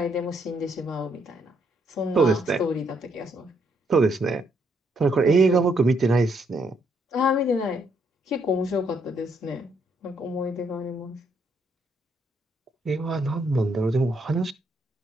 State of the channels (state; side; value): normal; both; correlation 0.73